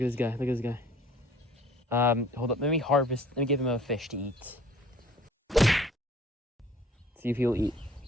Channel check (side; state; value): both; normal; correlation 0.52